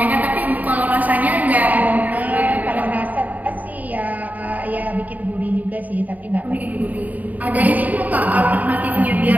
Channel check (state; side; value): late; left; 0.077 ms